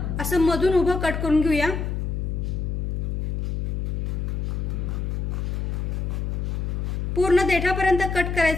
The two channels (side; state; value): left; noise; hum, 1 dB below the sound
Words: असं मधून उभं कट करून घेऊया। पूर्ण देठापर्यंत कट